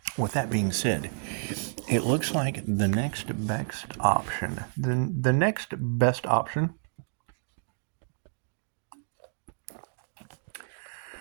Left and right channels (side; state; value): left; silent; digital silence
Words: with that being said, it looks like the next best option,